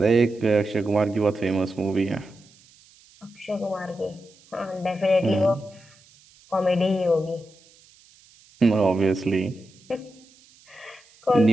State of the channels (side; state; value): right; noise; hiss, 28 dB below the sound